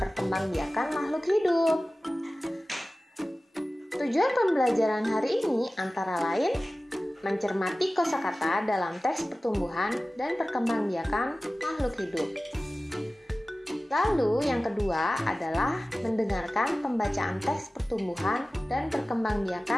makhluk hidup. Tujuan pembelajaran hari ini antara lain mencermati kosakata dalam teks pertumbuhan dan perkembangbiakan makhluk hidup. Lalu yang kedua adalah mendengarkan pembacaan teks pertumbuhan dan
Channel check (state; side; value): normal; both; correlation 0.96